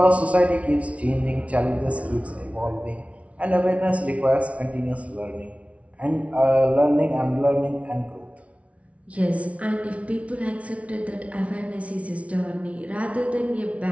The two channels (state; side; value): late; left; 0.064 ms